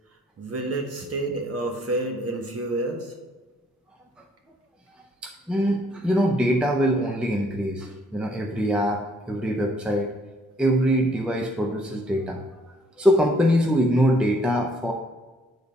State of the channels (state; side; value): normal; both; correlation 0.65